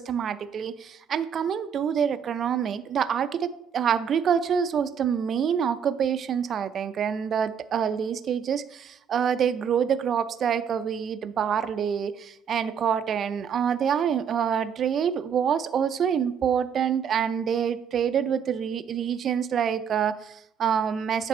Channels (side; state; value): left; quieter; 7.6 dB